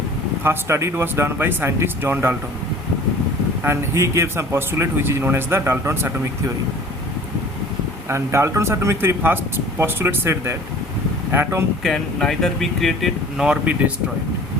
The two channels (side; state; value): both; normal; correlation 0.46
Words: first study was done by scientist John Dalton, and he gave some postulate which is known as the Dalton's atomic theory. And Dalton's atomic theory first postulate said that atom can neither be created nor be destroyed.